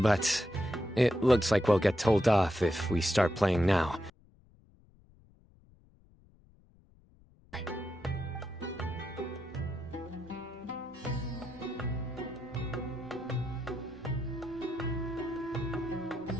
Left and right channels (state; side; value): noise; left; rumble, 28 dB below the sound